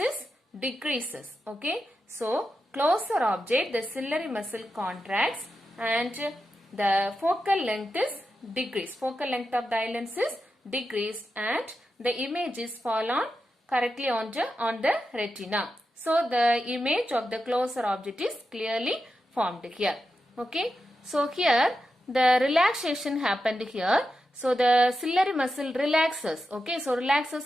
decreases. Okay, so closer object, the ciliary muscle contracts and the focal length is decreased. Focal length of the eye lens is decreased and the image is fall on correctly on the retina. So, the image of the closer object is clearly formed here. Okay. So, here the relaxation happened here. So, the ciliary muscle relaxes. Okay. So,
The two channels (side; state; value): both; normal; correlation 0.89